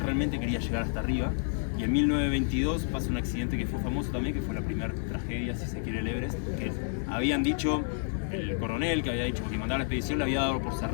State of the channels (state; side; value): silent; right; 56 dB below the other